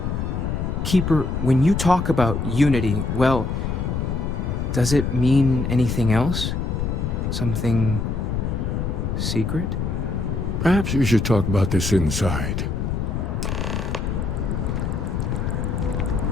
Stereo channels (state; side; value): noise; left; rumble, 1 dB below the sound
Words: Keeper, when you talk about unity, well, does it mean anything else? Something secret? Perhaps we should talk about this inside.